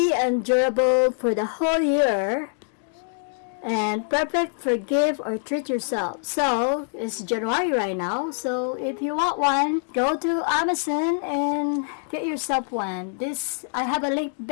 and durable for the whole year. And perfect for gift or treat yourself. So, it's January right now. So, if you want one, go to Amazon and get yourself one. I have a link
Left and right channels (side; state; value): right; silent; digital silence